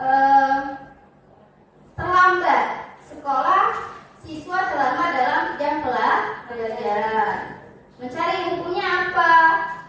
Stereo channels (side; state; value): both; identical; correlation 1.00